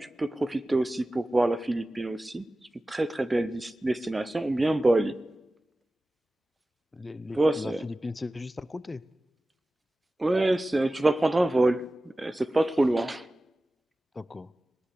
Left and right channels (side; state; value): both; normal; correlation 0.96